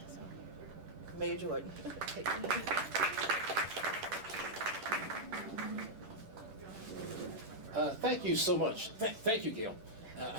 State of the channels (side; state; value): left; late; 10 ms